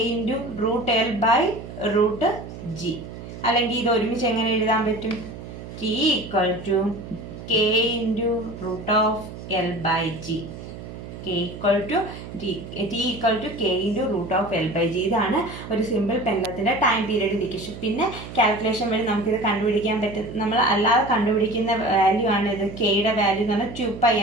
into root L by root G. അല്ലെങ്കിൽ ഇത് ഒരുമിച്ച് എങ്ങനെ എഴുതാൻ പറ്റും? T equal to K into root of L by G. K equal to T equal to K into root of L by G. ഇതാണ് ഒരു സിമ്പിൾ പെൻഡലത്തിൻ്റെ ടൈം പീരീഡ് ഡിക്കേഷൻ. പിന്നെ calculation വഴി നമുക്കിത് കണ്ടുപിടിക്കാൻ പറ്റും. നമ്മൾ അല്ലാതെ കണ്ടുപിടിക്കുന്ന വാല്യൂ ആണ് ഇത്. കെയുടെ വാല്യൂ എന്ന് പറഞ്ഞാൽ 2π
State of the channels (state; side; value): noise; right; hum, 12 dB below the sound